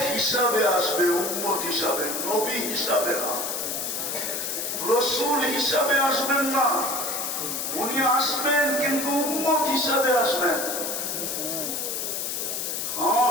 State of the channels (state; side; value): noise; left; hiss, 2 dB below the sound